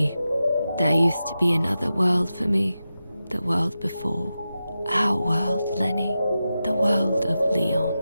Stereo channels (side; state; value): both; inverted; correlation -0.92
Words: there used to be another world for me. The world before. Our world, Lenny. The world of Leon.